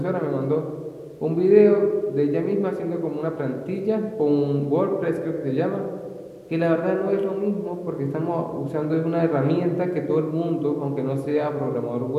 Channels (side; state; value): both; identical; correlation 1.00